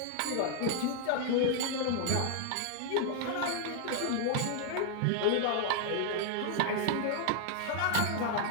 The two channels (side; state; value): both; different; correlation -0.01